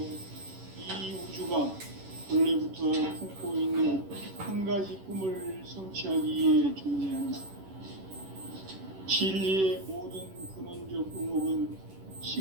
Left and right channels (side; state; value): left; late; 11 ms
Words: 이 우주가 원래부터 품고 있는 한 가지 꿈을 성취하기 위해 존재한다. 진리의 모든 근원적 의목은